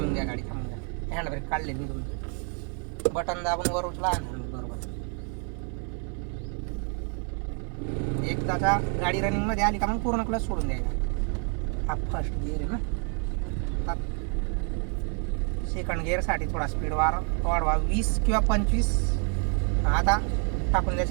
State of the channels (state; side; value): quieter; left; 40.0 dB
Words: घ्या गाडी, थांबून घ्या. हँड ब्रेक काढले मी तुमचे, बटन दाबून वर उचला आणि बरोबर. एकदाचा गाडी रनिंगमध्ये आली का मग पूर्ण क्लच सोडून द्यायचा. हा फर्स्ट गिअर आहे ना. सेकंड गिअरसाठी थोडा स्पीड वाढवा, 20 किंवा 25. आता टाकून द्या